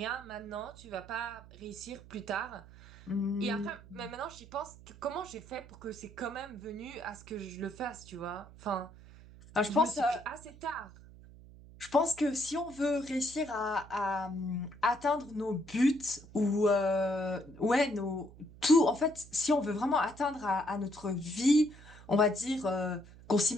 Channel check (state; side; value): noise; right; hum, 20 dB below the sound